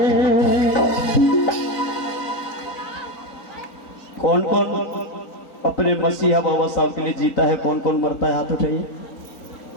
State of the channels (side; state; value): right; late; 4.0 ms